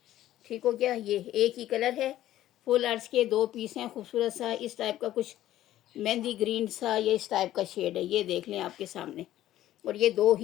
ठीक हो गया। ये एक ही कलर है, फुल अर्ज के 2 पीस हैं, खूबसूरत सा इस टाइप का कुछ मेहंदी ग्रीन सा, ये इस टाइप का शेड है, ये देख लें आपके सामने, और ये 2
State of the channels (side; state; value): right; quieter; 13.5 dB